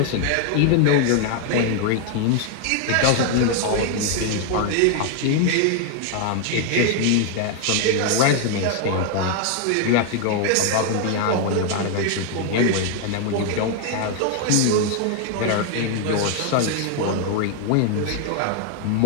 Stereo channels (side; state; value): both; different; correlation 0.00